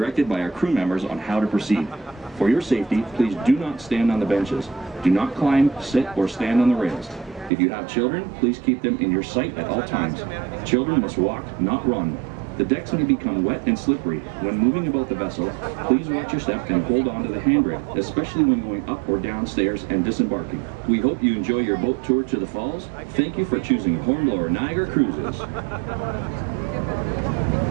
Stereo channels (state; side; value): drops out; left; at 7.5 s